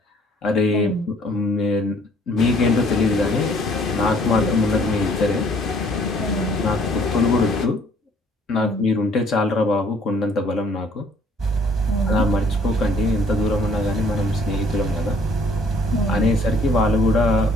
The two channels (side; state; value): both; normal; correlation 0.60